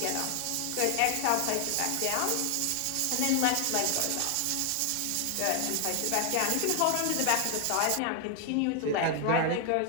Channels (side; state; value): both; different; correlation 0.00